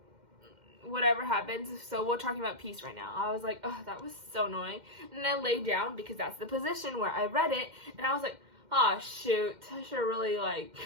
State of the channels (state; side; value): late; left; 2.1 ms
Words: whatever happens. So we're talking about peace right now. I was like, oh, that was so annoying. And I lay down because that's the position where I read it, and I was like, oh shoot, I should have really like